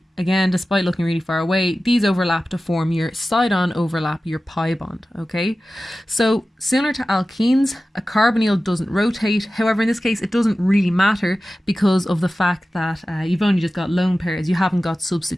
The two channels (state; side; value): normal; both; correlation 0.95